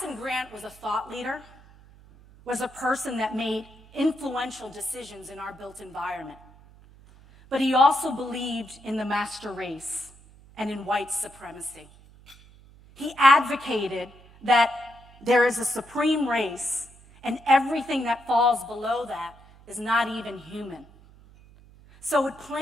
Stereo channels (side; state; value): right; noise; hum, 24 dB below the sound